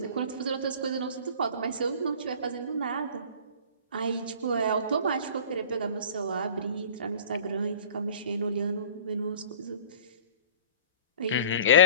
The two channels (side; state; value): both; inverted; correlation -0.42